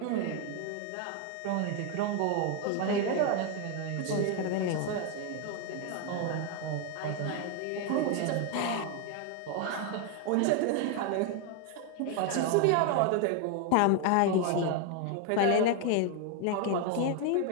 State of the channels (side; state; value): both; different; correlation 0.01